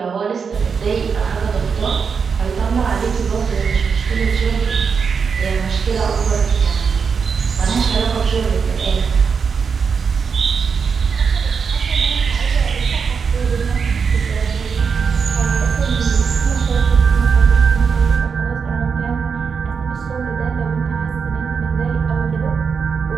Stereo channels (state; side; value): quieter; left; 5.9 dB